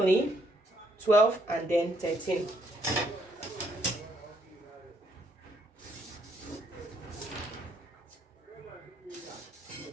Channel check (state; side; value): normal; both; correlation 0.71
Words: 12 and then 13.